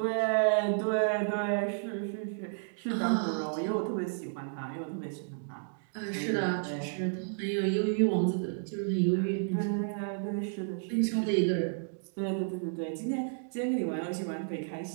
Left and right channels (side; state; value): left; silent; digital silence